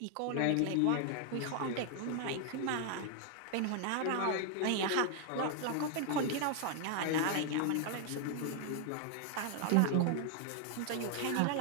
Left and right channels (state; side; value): different; both; correlation 0.00